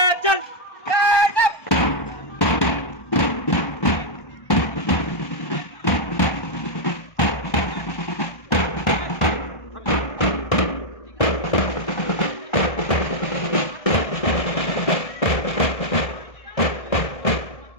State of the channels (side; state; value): right; late; 1.3 ms